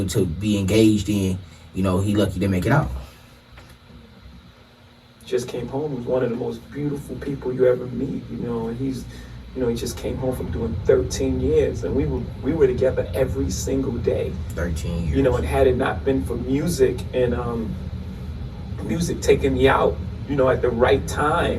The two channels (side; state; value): both; identical; correlation 1.00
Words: to be engaged in, you know, he lucky to make it out. Just came home. He was one of the most beautiful people you ever meet, you know, and he's, you know, he just came home from doing 13 years, and we were together every single day. 13 years. You know, and had it not been for music and music taking me out, you know, at the right